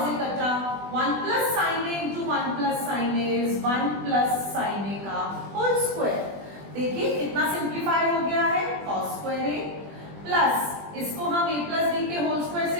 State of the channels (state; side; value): late; left; 20 ms